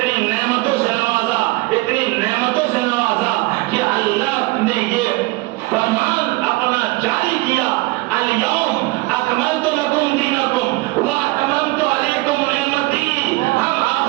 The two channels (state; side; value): quieter; left; 22.3 dB